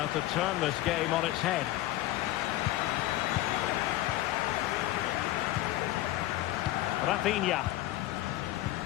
to turn this game on its head. Rafinha.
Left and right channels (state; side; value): quieter; right; 15.9 dB